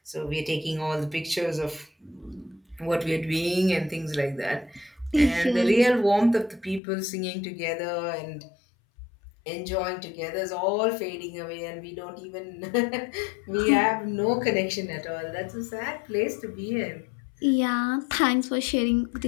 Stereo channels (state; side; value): drops out; right; at 6.8 s